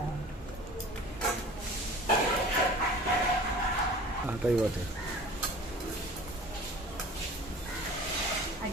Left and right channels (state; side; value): normal; both; correlation 0.42